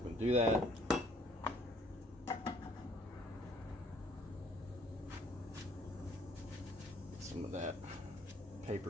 we're going to do that. Get some of that paper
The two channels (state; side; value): normal; both; correlation 0.61